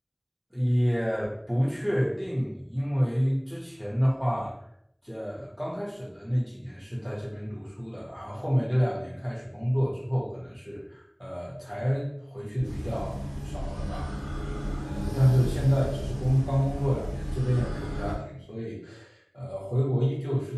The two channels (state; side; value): identical; both; correlation 1.00